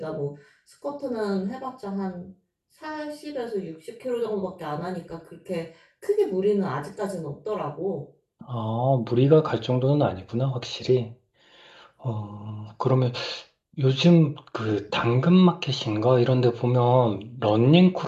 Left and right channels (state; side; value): identical; both; correlation 1.00